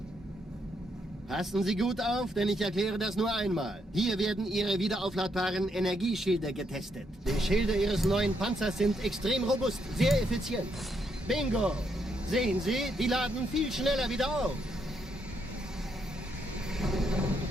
Passen Sie gut auf, denn ich erkläre das nur einmal. Hier werden Ihre wiederaufladbaren Energieschilde getestet. Die Schilde Ihres neuen Panzers sind extrem robust, sehr effizient. Bingo! Sehen Sie, die laden viel schneller wieder auf.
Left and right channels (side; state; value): both; normal; correlation 0.77